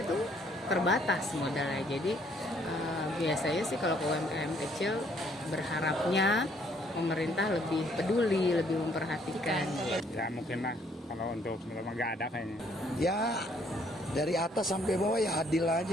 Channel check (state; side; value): normal; both; correlation 0.65